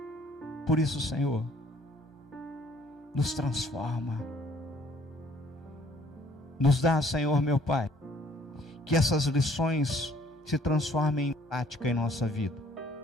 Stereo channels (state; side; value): normal; both; correlation 0.59